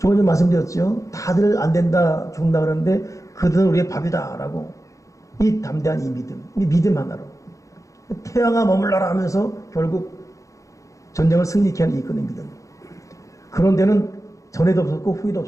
전에 말씀드렸죠. 다들 안 된다, 죽는다 그러는데 그들은 우리의 밥이다 라고. 이 담대한 이 믿음 하나로 태양아 머물러라 하면서 결국 전쟁을 승리케 하는 이끄는 믿음. 그런 데는 전에도 없었고 후에도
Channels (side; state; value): right; late; 0.16 ms